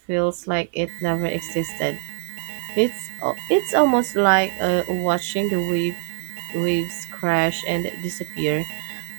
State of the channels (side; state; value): left; silent; 63 dB below the other